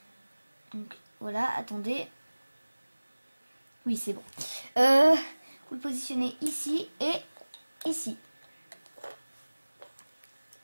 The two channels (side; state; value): both; inverted; correlation -1.00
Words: Donc voilà, attendez. Oui, c'est bon. Vous le positionnez ici et ici.